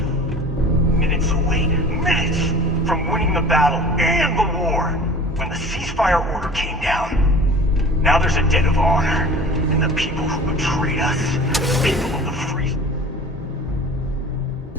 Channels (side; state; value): both; normal; correlation 0.42